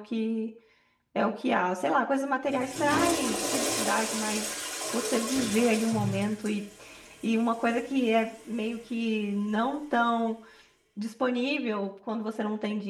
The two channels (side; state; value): both; identical; correlation 1.00